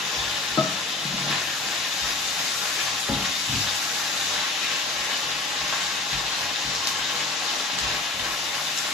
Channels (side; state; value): right; quieter; 3.3 dB